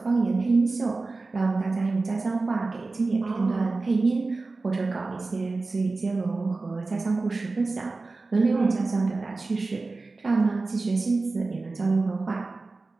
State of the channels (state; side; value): quieter; left; 3.6 dB